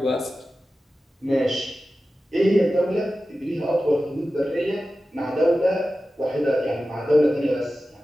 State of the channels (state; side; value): normal; both; correlation 0.94